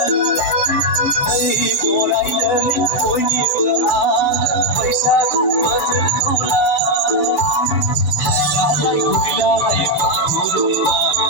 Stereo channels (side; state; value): right; late; 6.9 ms